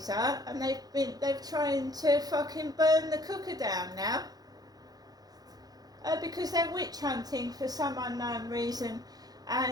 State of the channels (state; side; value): late; left; 0.19 ms